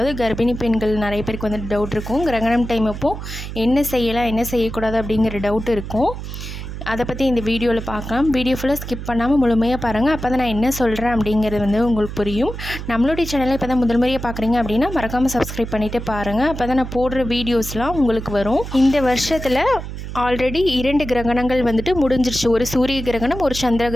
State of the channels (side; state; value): right; noise; hum, 8 dB below the sound